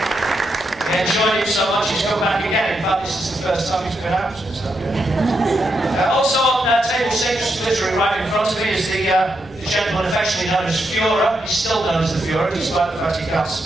He enjoyed it so much he's come back again. In fact, this is the first time he's been out since that. Also on table 6, literally right in front of me, is the gentleman affectionately known as Führer. He's still known as the Führer, despite the fact he can't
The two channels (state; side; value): noise; left; rumble, 24 dB below the sound